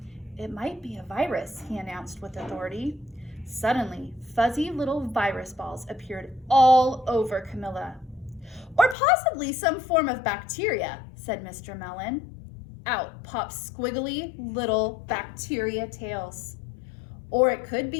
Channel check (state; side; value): drops out; right; at 9.0 s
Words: "It might be a virus," he announced with authority. Suddenly, fuzzy little virus balls appeared all over Camilla. "Or possibly some form of bacteria," said Mr. Mellon. Out popped squiggly little bacteria tails. "Or it could